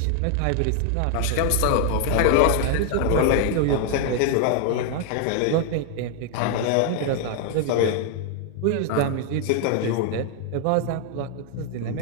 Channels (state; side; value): different; both; correlation 0.00